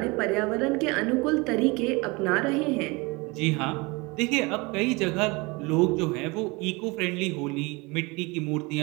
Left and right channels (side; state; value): left; quieter; 25.8 dB